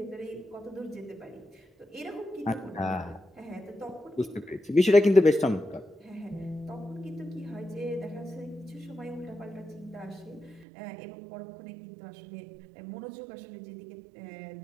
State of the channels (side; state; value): left; drops out; at 10.7 s